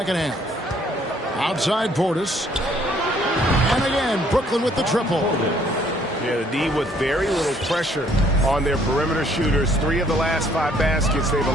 half. Outside Portis. And again, Brooklyn with the triple. Yeah, the D with very little pressure on their perimeter shooters. 3 of the last 5 baskets they've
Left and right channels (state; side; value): normal; both; correlation 0.63